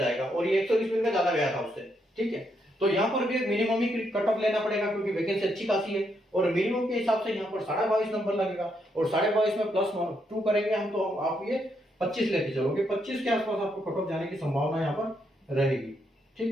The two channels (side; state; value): both; normal; correlation 0.78